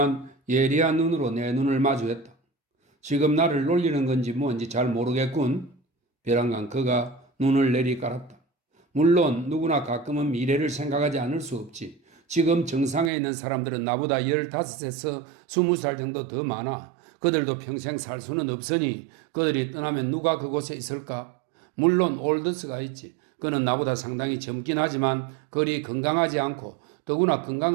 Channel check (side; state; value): left; drops out; at 13.1 s